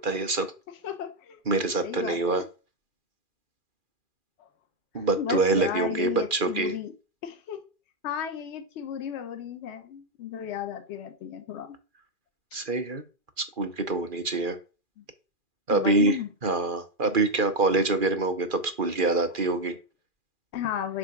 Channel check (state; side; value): late; left; 2.4 ms